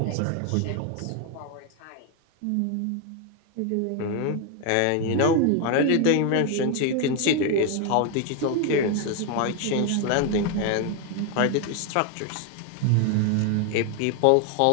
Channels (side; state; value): both; different; correlation 0.01